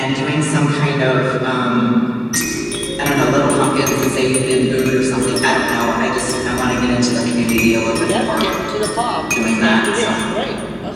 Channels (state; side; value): identical; both; correlation 1.00